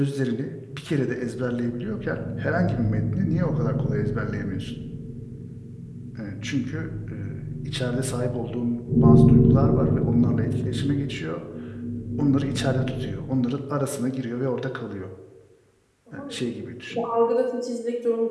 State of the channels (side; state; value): both; identical; correlation 1.00